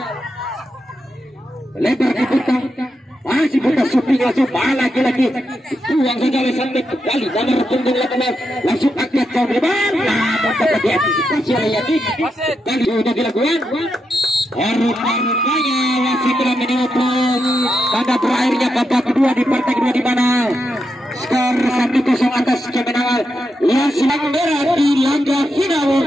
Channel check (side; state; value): both; normal; correlation 0.85